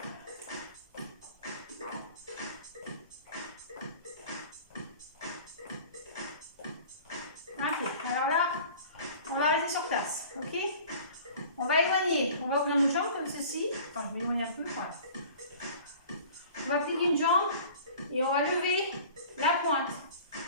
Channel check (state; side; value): inverted; both; correlation -0.45